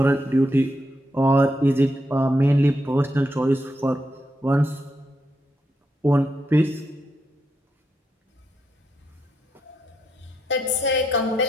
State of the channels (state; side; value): normal; both; correlation 0.82